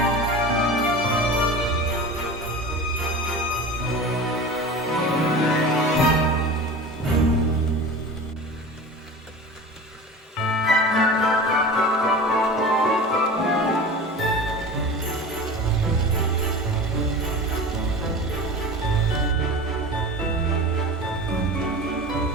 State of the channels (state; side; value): normal; both; correlation 0.34